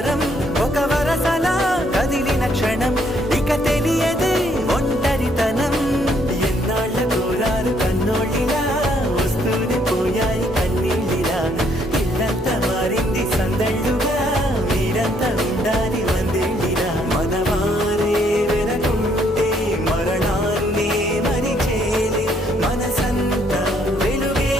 ఒక వరసలా కదిలిన క్షణం ఇక తెలియదే ఒంటరితనం ఎన్నాళ్ళ కోరాలు కన్నోళ్ళిలా వస్తూనే పోయాయి కన్నీళ్ళిలా ఇల్లంతా మారింది సందళ్ళుగా మీరంతా ఉండాలి వందేళ్ళిలా మనవారే వెనకుంటే మరణాన్నే మరిచేలే మనసంతా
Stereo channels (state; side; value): normal; both; correlation 0.69